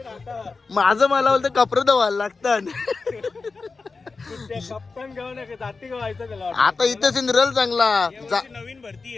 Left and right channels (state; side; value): quieter; right; 4.2 dB